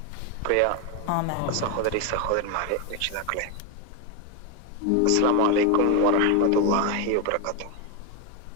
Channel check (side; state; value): both; different; correlation 0.02